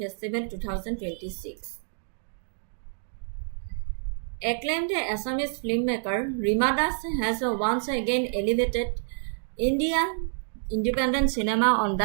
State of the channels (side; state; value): left; silent; digital silence